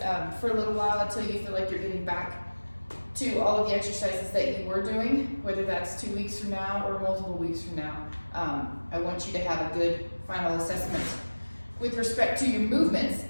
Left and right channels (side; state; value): both; inverted; correlation -1.00